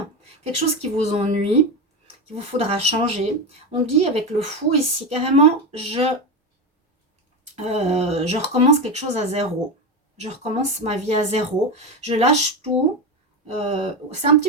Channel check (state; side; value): normal; both; correlation 0.16